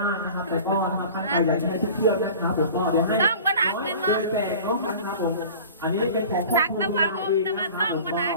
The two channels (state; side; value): inverted; both; correlation -0.40